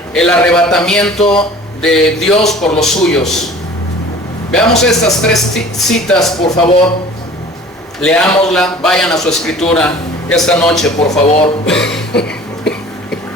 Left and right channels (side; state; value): both; normal; correlation 0.46